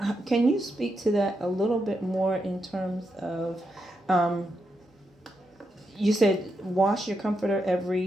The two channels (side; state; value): both; normal; correlation 0.83